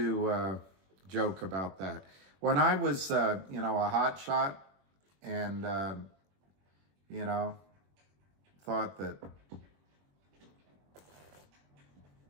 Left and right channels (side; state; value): left; late; 21 ms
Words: joke about that. When I was, a hot shot and,